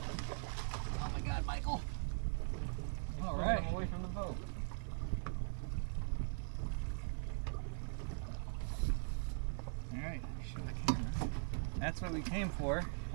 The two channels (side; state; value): left; silent; 50 dB below the other